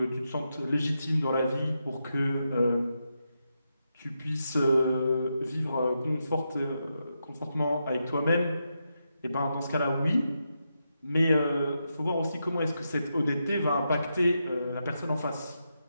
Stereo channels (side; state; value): both; inverted; correlation -0.85